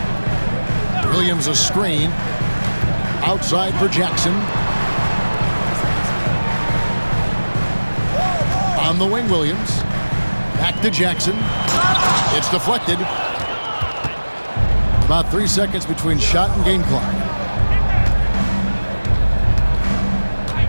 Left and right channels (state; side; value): inverted; both; correlation -1.00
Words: Williams a screen. Outside for Jackson. On the wing, Williams. Back to Jackson. It's deflected. About 3 seconds between shot and game clock.